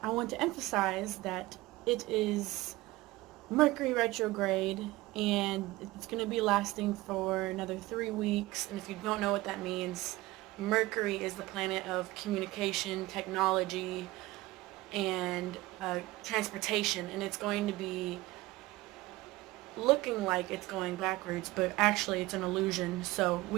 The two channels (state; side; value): quieter; left; 19.3 dB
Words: I want to emphasize that it is Mercury retrograde and it's going to be lasting for another 3 weeks. And if you don't know what that means, Mercury is the planet of communication, technology, and transportation, and it's going to be looking like it's going backwards, but actually it's an illusion. So